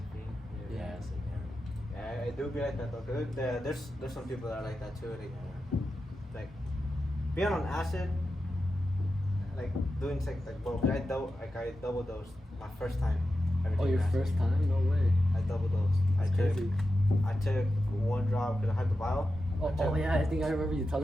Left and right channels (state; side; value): normal; both; correlation 0.91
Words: Yeah, it's like, Yeah, it do be like that though. Cause there's some people that are like that too. Like being on acid, like doing sex, like bro. I double dosed my first time. Oh, your first time? No way. I double dosed. I took one drop because I had the vial. Oh yeah, I think I remember you